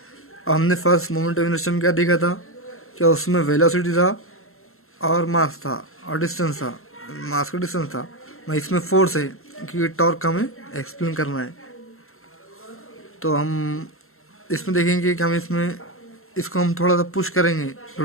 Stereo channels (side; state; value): right; late; 0.62 ms